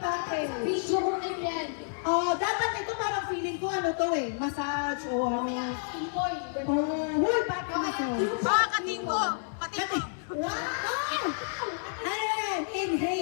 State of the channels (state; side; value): silent; right; digital silence